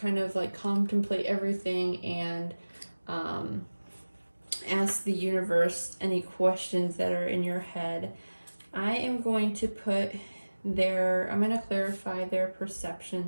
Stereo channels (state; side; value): inverted; both; correlation -1.00